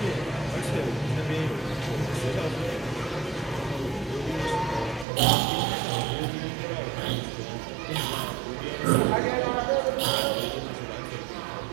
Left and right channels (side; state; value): left; drops out; at 5.1 s